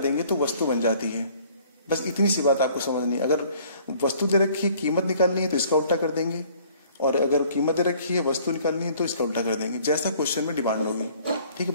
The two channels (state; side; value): inverted; both; correlation -0.56